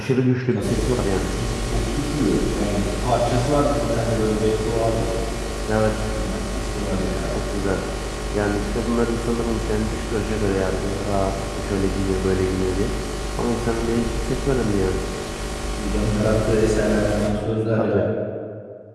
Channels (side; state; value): both; identical; correlation 1.00